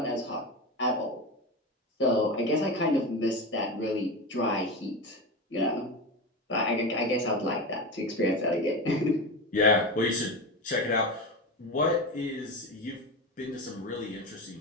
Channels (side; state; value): both; normal; correlation 0.22